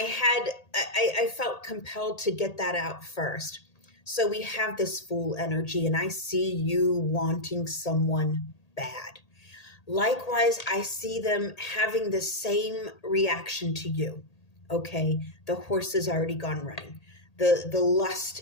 felt compelled to get that out first. So we have this Fool energy, and I see you wanting someone bad. Likewise, I see them having the same reaction to you. Okay, the horse has already gone running. The lust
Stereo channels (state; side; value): late; right; 1.8 ms